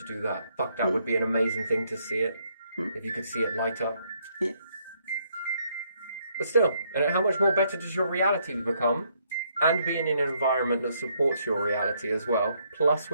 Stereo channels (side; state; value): both; inverted; correlation -0.72